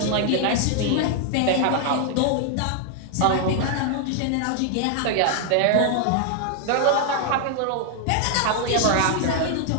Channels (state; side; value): different; both; correlation 0.00